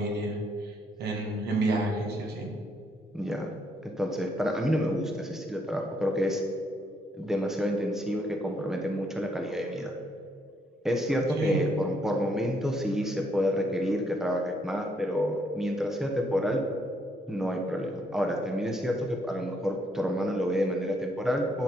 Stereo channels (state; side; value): normal; both; correlation 0.72